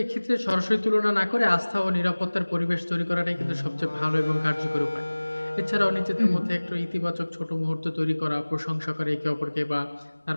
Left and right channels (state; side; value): inverted; both; correlation -1.00